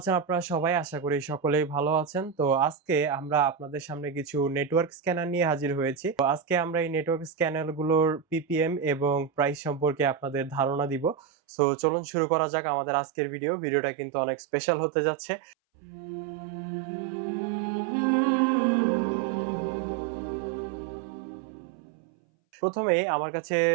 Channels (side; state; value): left; drops out; at 11.2 s